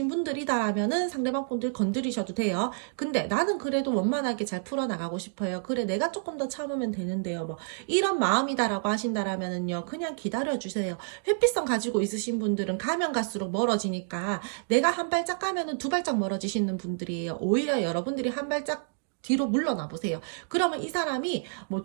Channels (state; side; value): silent; left; digital silence